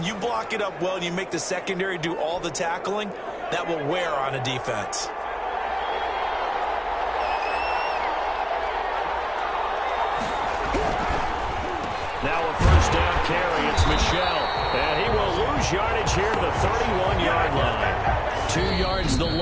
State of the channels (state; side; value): identical; both; correlation 1.00